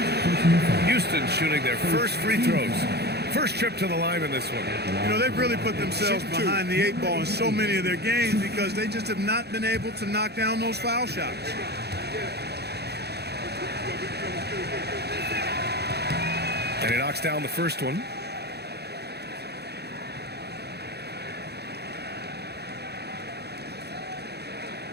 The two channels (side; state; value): left; late; 0.48 ms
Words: Houston shooting their first free throws. First trip to the line in this one. You know, they've really put themselves behind the 8 ball in so many of their games because they just have not been able to knock down those foul shots. And he knocks down the first one.